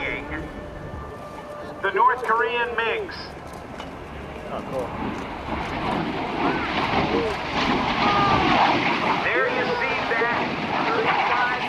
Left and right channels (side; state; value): both; identical; correlation 1.00